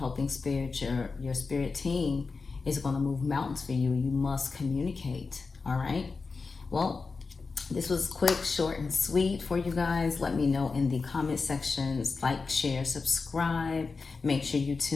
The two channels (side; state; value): right; quieter; 4.4 dB